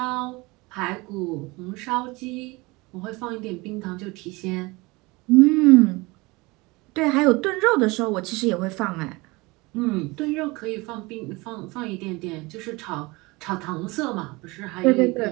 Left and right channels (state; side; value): quieter; left; 23.9 dB